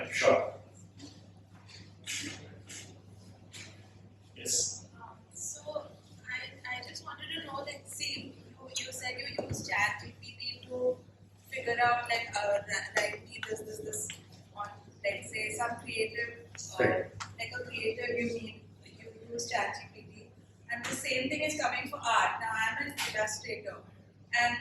sure. Yes. So I just wanted to know that, see, you said you use ChatGPT to figure out like write me this on, let's say, some creative like a creative you use ChatGPT, and the same thing is coming for art. Now I'm an illustrator, and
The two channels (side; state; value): both; identical; correlation 1.00